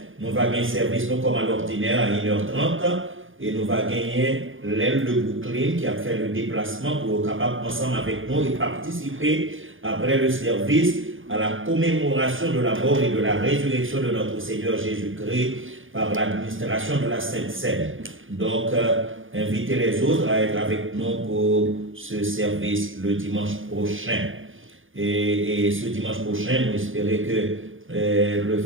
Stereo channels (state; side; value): late; left; 0.58 ms